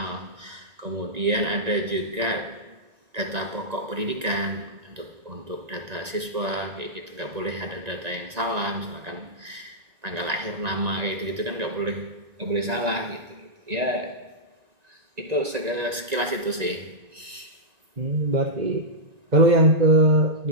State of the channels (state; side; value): late; left; 1.9 ms